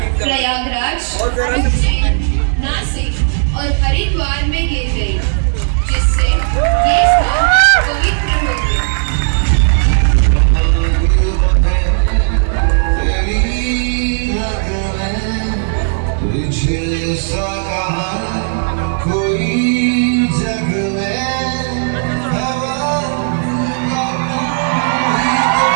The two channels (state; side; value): silent; left; digital silence